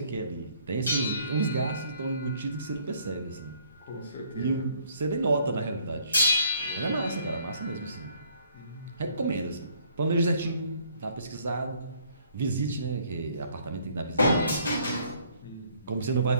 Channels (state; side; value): inverted; both; correlation -0.63